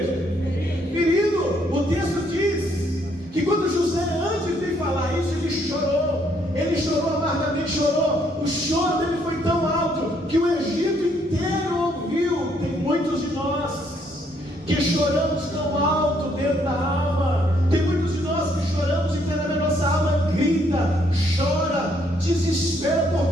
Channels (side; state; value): both; normal; correlation 0.70